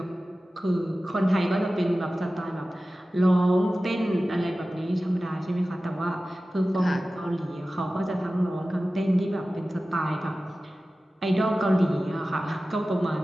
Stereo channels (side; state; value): both; normal; correlation 0.96